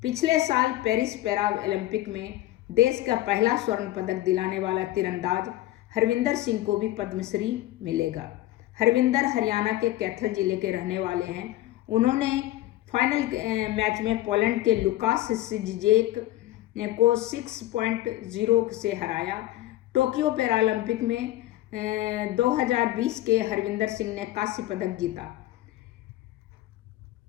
पिछले साल पेरिस पैरा ओलंपिक में देश का पहला स्वर्ण पदक दिलाने वाला तीरंदाज हरविंदर सिंह को भी पद्मश्री मिलेगा। हरविंदर हरियाणा के कैथल जिले के रहने वाले हैं। उन्होंने फाइनल मैच में पोलैंड के लुकास सिजेक को 6.0 से हराया। टोक्यो पैरालंपिक में 2020 के हरविंदर सिंह ने कांस्य पदक जीता।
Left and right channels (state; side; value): quieter; right; 15.5 dB